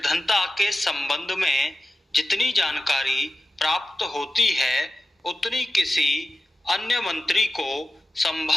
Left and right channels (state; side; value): normal; both; correlation 0.93